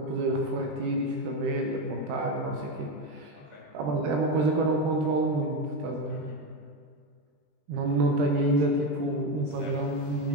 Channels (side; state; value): left; late; 20 ms